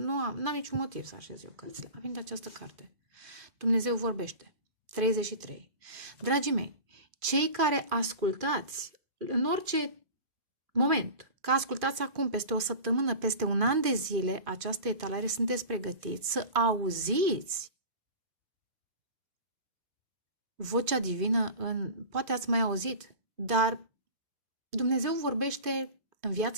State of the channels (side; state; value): left; late; 2.5 ms